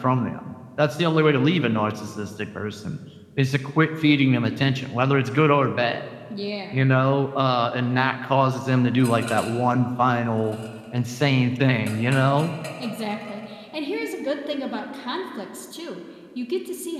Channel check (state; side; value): identical; both; correlation 1.00